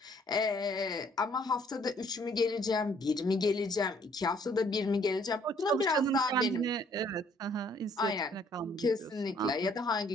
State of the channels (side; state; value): both; normal; correlation 0.62